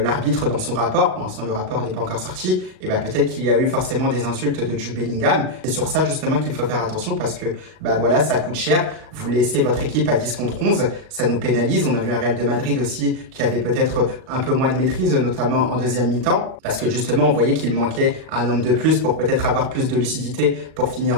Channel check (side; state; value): left; late; 38 ms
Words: dans son rapport, pour l'instant le rapport n'est pas encore sorti, et ben peut-être qu'il y a eu forcément des insultes de Jude Bellingham. C'est sur ça justement qu'il faut faire attention parce que bah voilà, ça coûte cher. Vous laissez votre équipe à 10 contre 11, ça nous pénalise. On a vu un Real de Madrid aussi qui avait peut-être un peu moins de maîtrise, notamment en deuxième mi-temps, parce que justement on voyait qu'il manquait un homme de plus pour peut-être avoir plus de lucidité pour